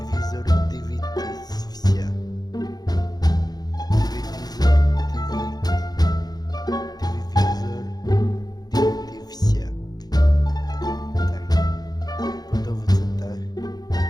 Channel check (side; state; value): right; late; 0.19 ms